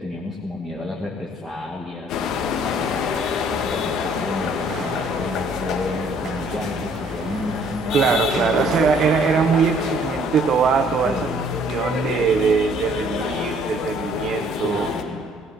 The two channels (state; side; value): normal; both; correlation 0.60